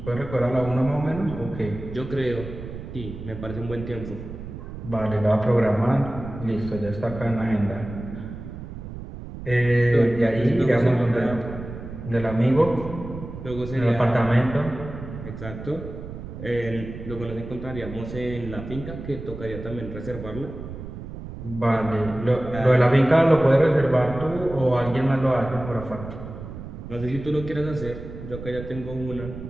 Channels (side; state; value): right; noise; rumble, 10 dB below the sound